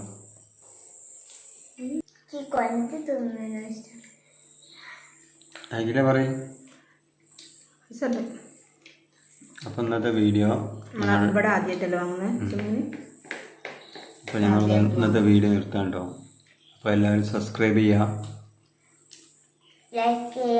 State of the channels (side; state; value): both; identical; correlation 1.00